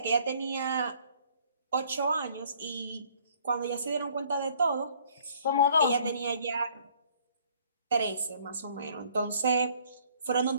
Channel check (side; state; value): both; inverted; correlation -0.59